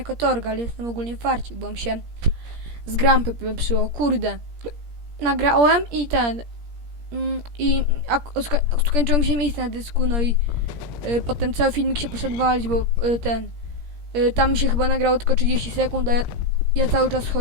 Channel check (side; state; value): left; late; 17 ms